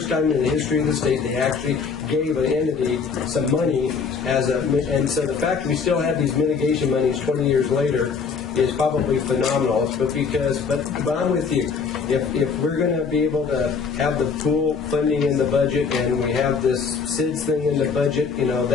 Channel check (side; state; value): right; quieter; 5.5 dB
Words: time in the history of the state they actually gave an entity some money and so the fact that we still have these mitigation monies 20 years later is probably phenomenal. But I'm with you. If we're going to be able to have the pool funding in the budget, and we have this SIDS thing in the budget, you know,